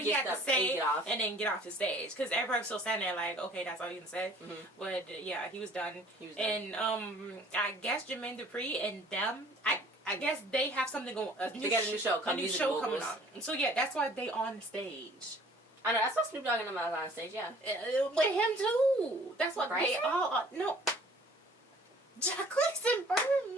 he had to say and then get off the stage. Because everybody was still standing there like, okay, that's all you can say. Mm-hmm. But yeah, he was done. And I guess Jermaine Dupri and them, I guess they have something going. They got a new show coming on. And so yeah, that's why they on the stage. I know, that's why Snoop Dogg and them are on stage. Yeah, with him too. That's what they all. No, Jacquees and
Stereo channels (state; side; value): normal; both; correlation 0.53